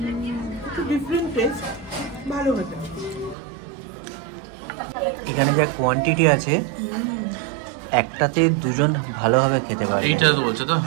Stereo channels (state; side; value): drops out; left; at 3.4 s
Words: একটু ডিফারেন্ট টেস্ট, ভালো হতো। এখানে যা কোয়ান্টিটি আছে, একটাতে দুজন ভালোভাবে খেতে পারে। এইটা তো বলছো তো?